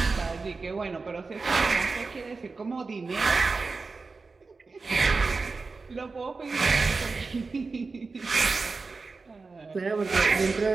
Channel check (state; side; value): quieter; left; 4.1 dB